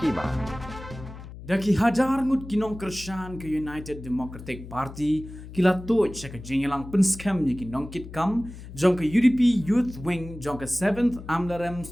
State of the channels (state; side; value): noise; left; hum, 14 dB below the sound